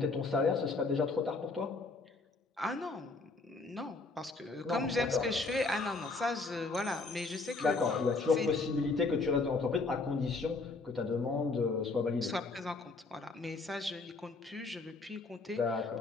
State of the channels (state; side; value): quieter; right; 3.7 dB